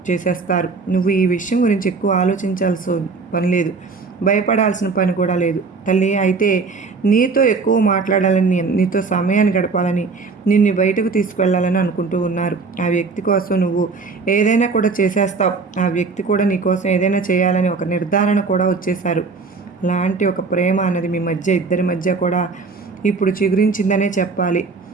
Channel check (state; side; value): quieter; left; 4.5 dB